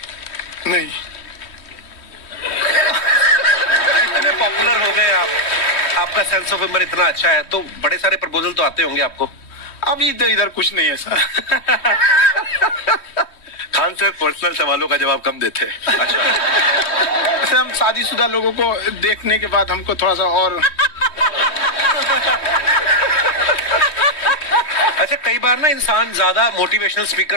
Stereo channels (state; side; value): late; right; 3.1 ms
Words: नहीं, इतने पॉपुलर हो गए आप, आपका सेंस ऑफ ह्यूमर इतना अच्छा है, तो बड़े सारे प्रपोजल तो आते होंगे आपको। अभी तो इधर कुछ नहीं है सर। खान सर पर्सनल सवालों का जवाब कम देते हैं। अच्छा, ऐसे हम शादीशुदा लोगों को देखने के बाद हमको थोड़ा सा और अच्छा कई बार ना इंसान ज्यादा मोटिवेशनल